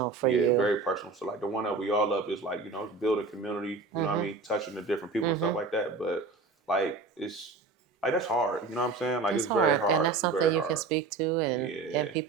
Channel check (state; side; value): quieter; left; 4.1 dB